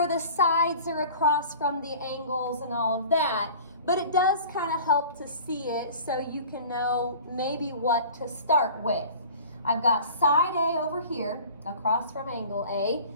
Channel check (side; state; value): both; inverted; correlation -0.43